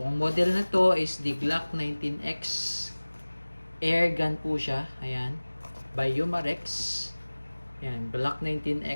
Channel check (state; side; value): inverted; both; correlation -1.00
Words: model na to is the Glock 19X Airgun po siya. Ayan. By Umarex. Ayan, Glock